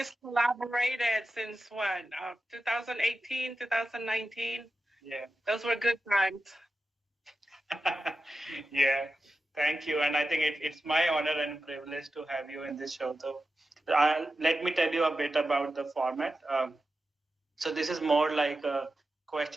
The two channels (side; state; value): both; normal; correlation 0.92